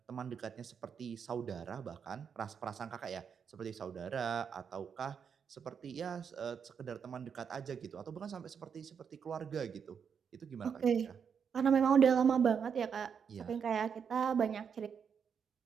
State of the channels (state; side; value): quieter; left; 6.9 dB